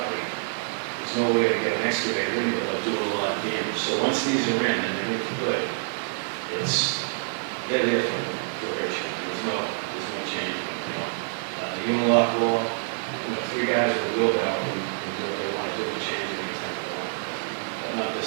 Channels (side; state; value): left; silent; 56 dB below the other